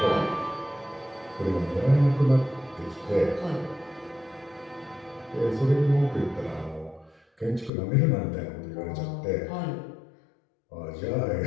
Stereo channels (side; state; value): right; drops out; at 7.7 s